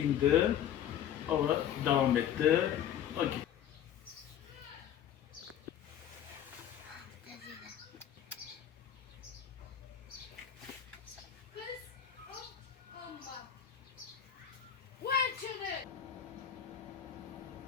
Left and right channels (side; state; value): right; quieter; 9.8 dB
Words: Hava devam etti. Ha, gitti.